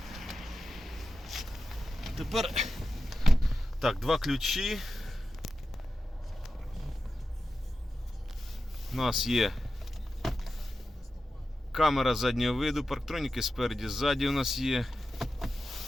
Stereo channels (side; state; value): both; normal; correlation 0.92